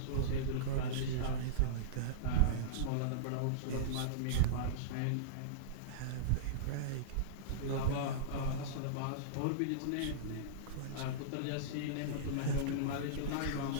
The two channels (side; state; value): both; different; correlation -0.04